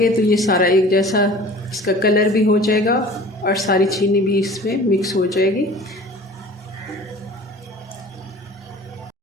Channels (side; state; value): both; normal; correlation 0.44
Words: तो ये सारा एक जैसा इसका कलर भी हो जाएगा और सारी चीनी भी इसमें मिक्स हो जाएगी।